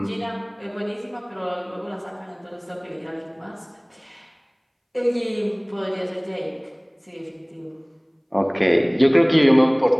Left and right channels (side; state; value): both; identical; correlation 1.00